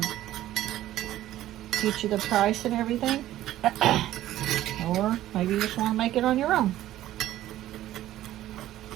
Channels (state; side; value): quieter; left; 13.8 dB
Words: get you the price and everything. Or maybe you just want to make it on your own.